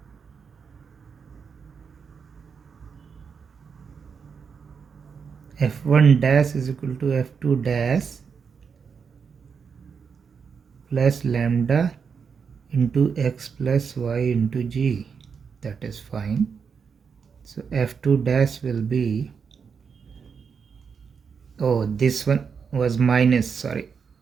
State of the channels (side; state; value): left; quieter; 6.2 dB